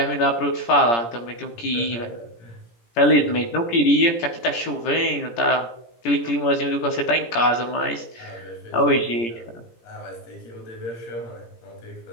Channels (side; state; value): right; late; 17 ms